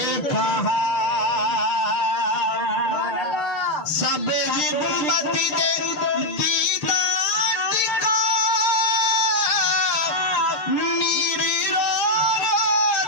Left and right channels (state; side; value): late; right; 6.4 ms